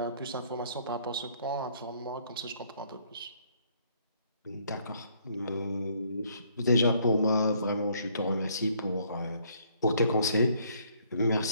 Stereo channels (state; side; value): inverted; both; correlation -0.65